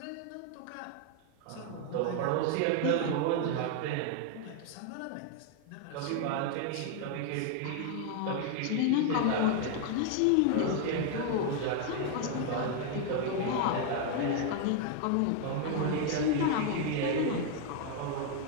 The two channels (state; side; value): different; both; correlation 0.00